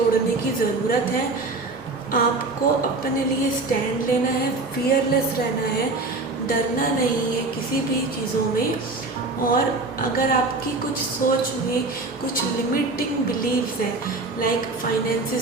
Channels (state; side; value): quieter; left; 3.4 dB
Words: की ज़रूरत है। आपको अपने लिए स्टैंड लेना है, फियरलेस रहना है, डरना नहीं है किसी भी चीज़ों में। और अगर आपकी कुछ सोच में कुछ लिमिटिंग बिलीव्स हैं, लाइक